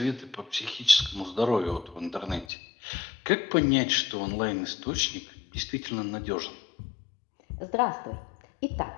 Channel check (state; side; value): drops out; right; at 2.5 s